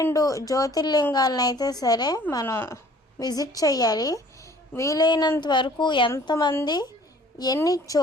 జ్యోతిర్లింగాలను అయితే సరే మనం విజిట్ చేయాలి. వీలైనంత వరకు ఎంతమంది ఎన్ని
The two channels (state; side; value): normal; both; correlation 0.53